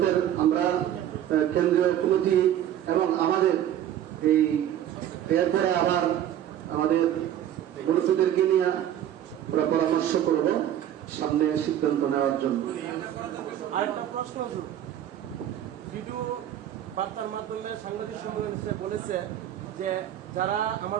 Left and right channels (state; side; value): quieter; left; 11.2 dB